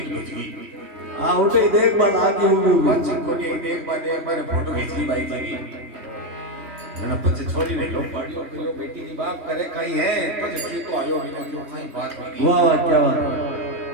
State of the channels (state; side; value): late; left; 3.2 ms